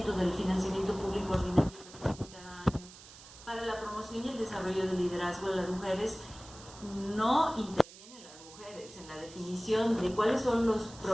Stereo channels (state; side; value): noise; right; hiss, 18 dB below the sound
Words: del financiamiento público ordinario cada año para la promoción y el desarrollo del liderazgo de las mujeres, no intervienen las mujeres en la definición de cuáles son los